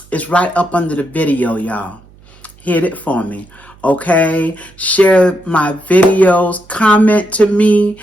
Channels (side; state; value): right; noise; hum, 27 dB below the sound